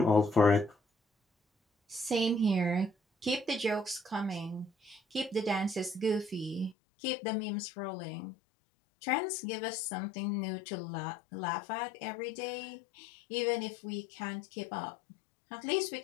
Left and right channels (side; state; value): right; drops out; at 6.8 s